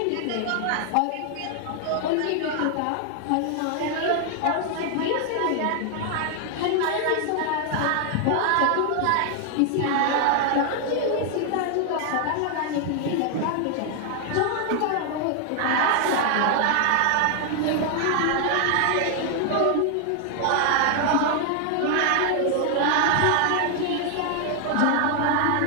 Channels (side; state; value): both; different; correlation 0.00